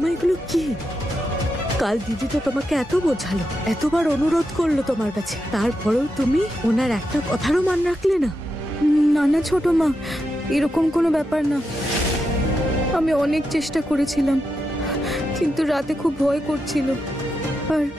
এগুলো কি? কাল দিদি তো তোমাকে এত বোঝালো, এতবার অনুরোধ করলো তোমার কাছে, তারপরেও তুমি ওনার একটা কথারও মান রাখলে না। না না ছোট মা, এরকম কোনো ব্যাপার না। আমি অনেক চেষ্টা করেছিলাম, কিন্তু রাতে খুব ভয় করছিল। আর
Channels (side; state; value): both; normal; correlation 0.86